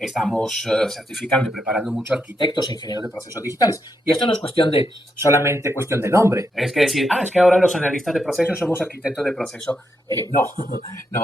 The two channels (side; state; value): both; normal; correlation 0.81